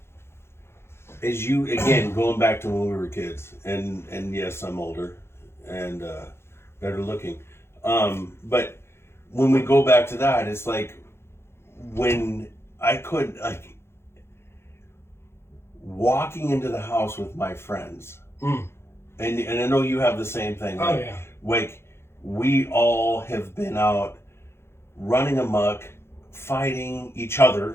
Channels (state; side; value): late; right; 0.12 ms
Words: as you, again, going back to when we were kids, and yes, I'm older and better looking, but when we go back to that, it's like when I could, like, walking into the house with my friends, and I know you have the same thing. Oh, yeah. Like, we all have been out running amok, fighting each